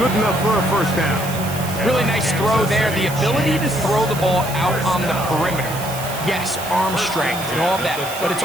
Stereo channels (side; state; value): right; noise; hiss, 11 dB below the sound